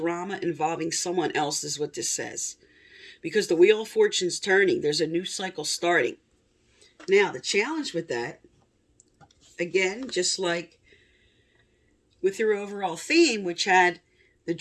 involving someone else is what this says. Because the Wheel of Fortune's turning, there's a new cycle starting. Now, the challenge with that, again, just like with your overall theme, which had the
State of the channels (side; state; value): both; identical; correlation 1.00